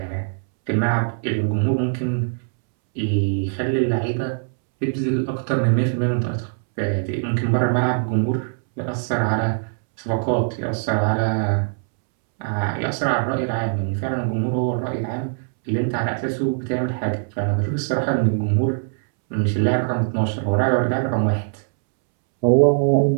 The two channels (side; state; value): left; silent; 64 dB below the other